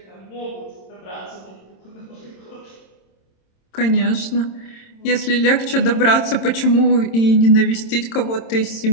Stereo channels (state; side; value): late; right; 26 ms